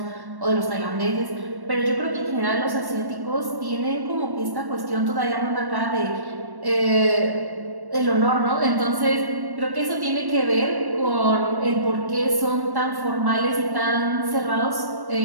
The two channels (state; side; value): late; left; 1.1 ms